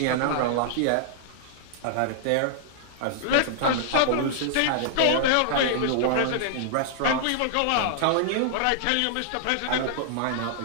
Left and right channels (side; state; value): both; different; correlation -0.01